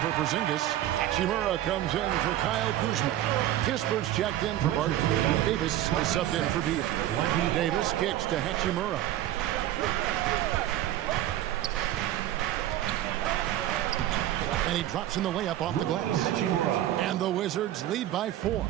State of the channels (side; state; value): left; quieter; 13.2 dB